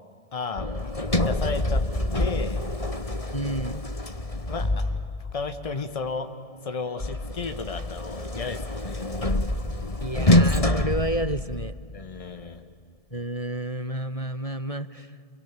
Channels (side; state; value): right; late; 1.7 ms